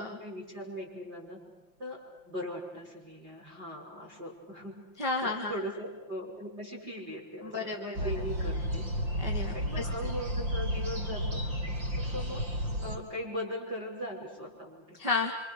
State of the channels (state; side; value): late; left; 5.7 ms